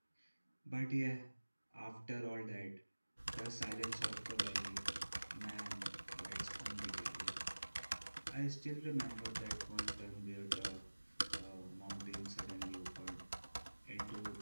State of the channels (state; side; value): inverted; both; correlation -1.00